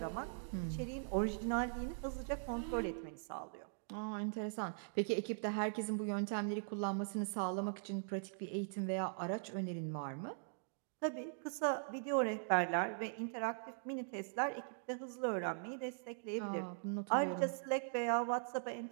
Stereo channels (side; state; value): left; silent; digital silence